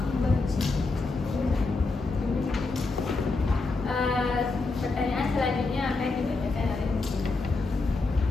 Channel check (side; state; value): right; quieter; 3.7 dB